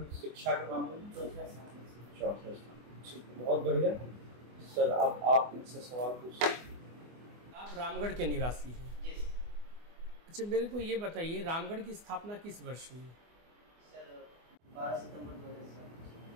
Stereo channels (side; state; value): left; late; 24 ms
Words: शिक्षा के मामले में? 4th स्थान। 4th स्थान। बहुत बढ़िया सर। आप इनसे सवाल पूछ सकते हैं। आप रामगढ़ के निवासी हैं? जी सर। अच्छा, मेरे को ये बताइए रामगढ़ की स्थापना किस वर्ष हुई? सर 12 सितंबर 2007।